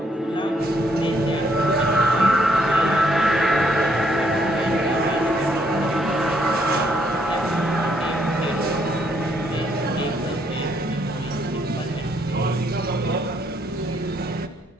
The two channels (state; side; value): normal; both; correlation 0.71